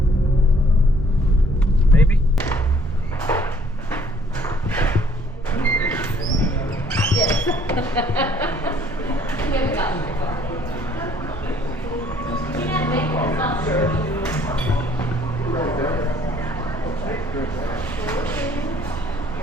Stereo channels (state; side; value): normal; both; correlation 0.60